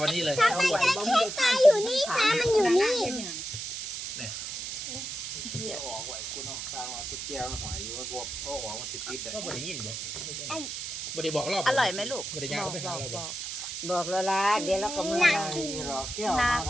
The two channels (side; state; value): right; noise; hiss, 6 dB below the sound